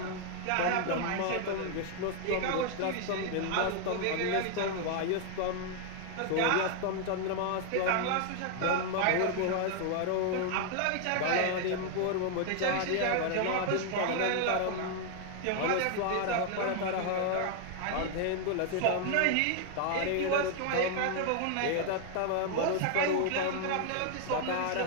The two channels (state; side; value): different; both; correlation 0.00